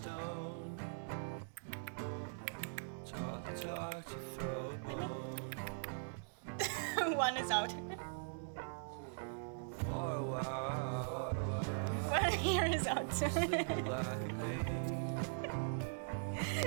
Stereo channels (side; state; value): left; silent; digital silence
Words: Talk to throw a bone. One is out. For a while. One here is out. Sleeping like a baby.